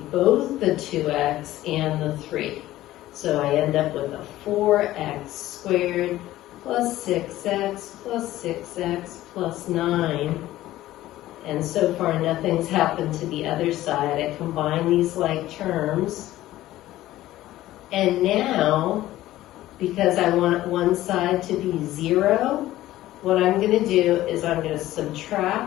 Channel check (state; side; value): quieter; right; 15.2 dB